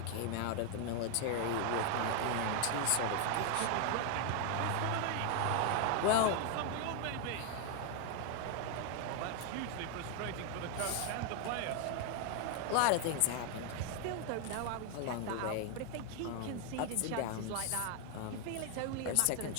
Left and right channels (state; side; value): different; both; correlation 0.00